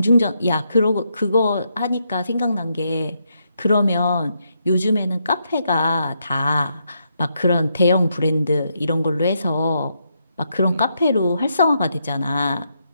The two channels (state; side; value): inverted; both; correlation -0.79